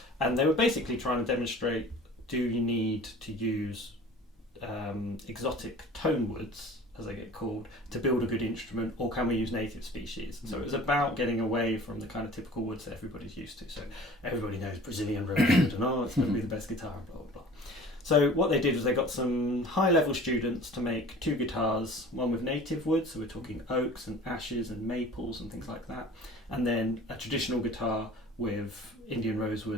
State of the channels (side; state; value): both; normal; correlation 0.44